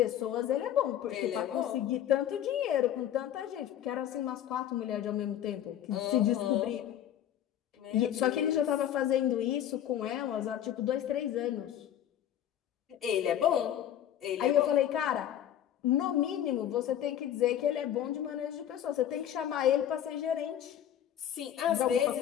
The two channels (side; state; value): right; quieter; 10.7 dB